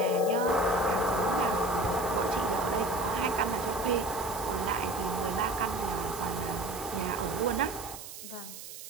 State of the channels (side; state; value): right; noise; hiss, 12 dB below the sound